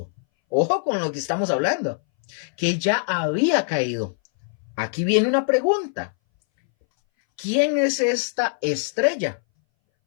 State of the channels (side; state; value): right; silent; 61 dB below the other